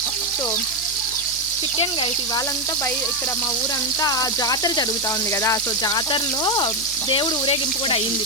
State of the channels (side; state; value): right; noise; hum, 18 dB below the sound